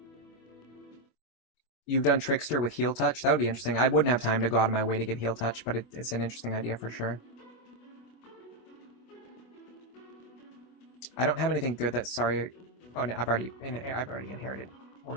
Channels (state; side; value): late; right; 24 ms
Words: You've done Trickster with Heal Touch? That would be interesting. I wouldn't have time to go out of my way to get Heal Touch, but it's an interesting idea for sure. I don't have anything good that's sorry. Oh no, I've already inherited